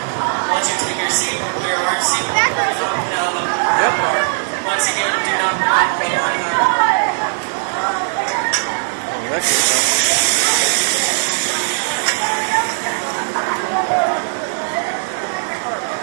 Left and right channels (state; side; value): silent; left; 62 dB below the other